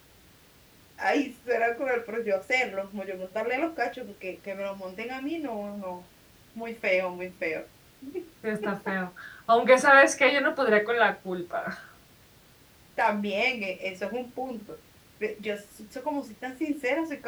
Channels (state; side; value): identical; both; correlation 1.00